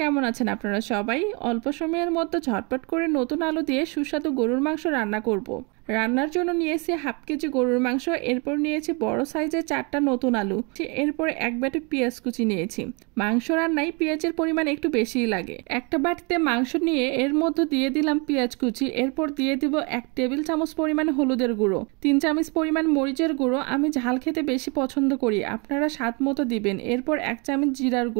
আছেন আপনারা সবাই? অল্প সময়ের মধ্যে ঝটপট করে নতুন আলু দিয়ে সুস্বাদু গরুর মাংস রান্না করব। রান্নার জন্য নিয়েছি হাফ কেজি গরুর মাংস, এরপর নিয়েছি বড় সাইজের 4টা নতুন আলু, এরপর এক বাটি পেঁয়াজ কুচি নিয়েছি। মাংস রান্নায় পেঁয়াজের পরিমাণ একটু বেশিই লাগে। একটা বাটিতে মাংস নিয়ে এর মধ্যে দিয়ে দিলাম পেঁয়াজ কুচি, এরপর দিয়ে দিব 1 টেবিল চামচ পরিমাণ হলুদের গুঁড়ো, 3 চামচ পরিমাণ মরিচের গুঁড়ো, আমি ঝাল খেতে বেশি পছন্দ করি, আপনারা স্বাদ মতো দিবেন। এরপর 1 চামচ জিরার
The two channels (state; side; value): quieter; left; 31.5 dB